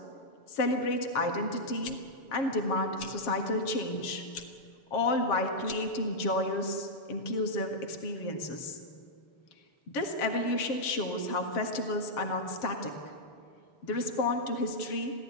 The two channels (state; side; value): late; right; 6.9 ms